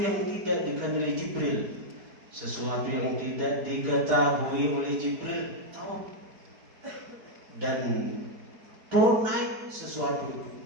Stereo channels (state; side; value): late; left; 4.6 ms